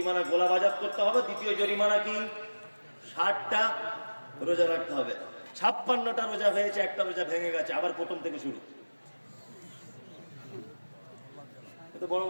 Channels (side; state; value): both; inverted; correlation -1.00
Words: গোলাম আজাদ করতে হবে। দ্বিতীয় জরিমানা কি? 60টা রোজা রাখতে হবে। 56টা রোজা হয়েছে, একটা রোজা ভেঙে গেছে, আবার প্রথম থেকে শুরু। বড়